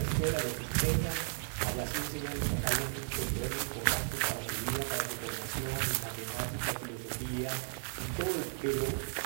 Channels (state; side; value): silent; left; digital silence